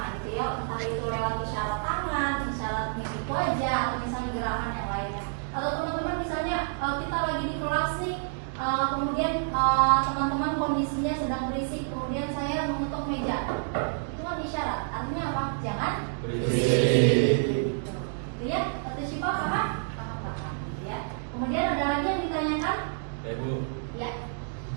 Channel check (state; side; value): silent; left; digital silence